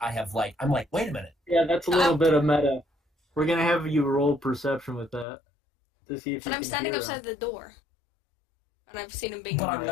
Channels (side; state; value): right; drops out; at 5.2 s